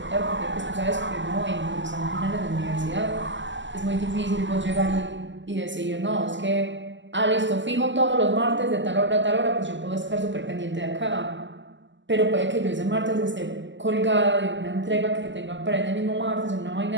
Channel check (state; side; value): late; left; 0.54 ms